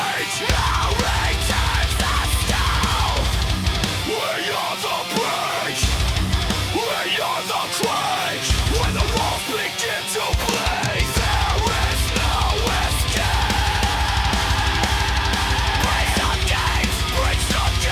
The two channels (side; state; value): both; identical; correlation 1.00